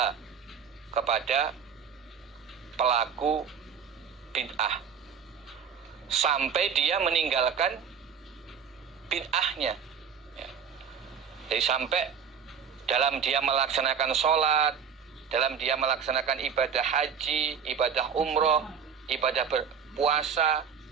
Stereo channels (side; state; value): left; quieter; 7.0 dB